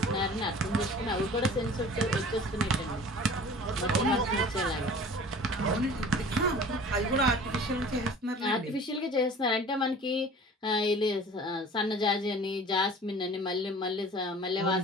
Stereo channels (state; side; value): normal; both; correlation 0.44